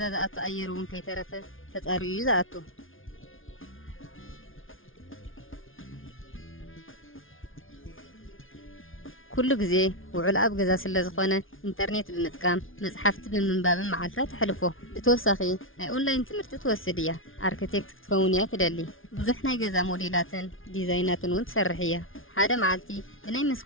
زأتو أيرون كي ترفه تتقاريو زأتو كل جزء وعلاب جزء سلزخونة إنترنت بمتكام مصحفت بمنباب معلفات حلفه بتوسخي أونلاين تمرت توسدية أركتكت تكونيا تدلي بزحنا جزء موديلاتن ديزايناتن وتسرحية حدا معلتي بناي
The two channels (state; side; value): late; right; 0.58 ms